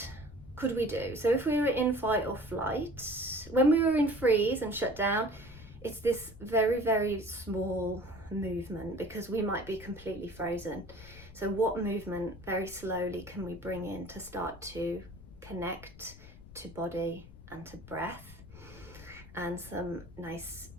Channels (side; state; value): left; noise; rumble, 17 dB below the sound